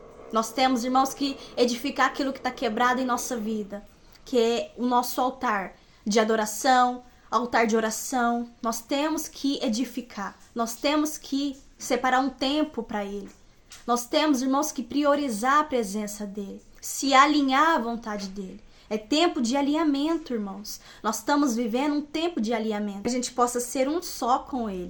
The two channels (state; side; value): identical; both; correlation 1.00